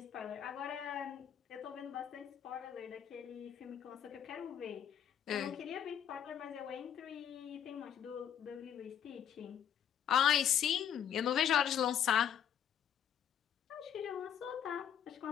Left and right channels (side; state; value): right; quieter; 9.2 dB